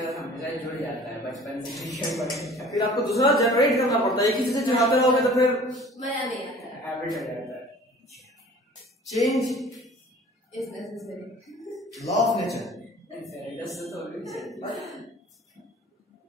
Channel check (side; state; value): both; normal; correlation 0.47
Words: हमेशा जुड़ जाता है बचपन से। फिर आपको दूसरा जनरेट करना पड़ता है, एक ही चीज से चिढ़ाते रहोगे तो फिर मजा नहीं आता है, हैबिट हो जाता है। Change is necessary, law of nature.